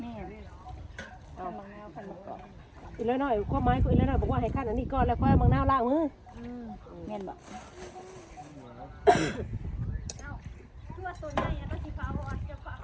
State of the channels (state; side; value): identical; both; correlation 1.00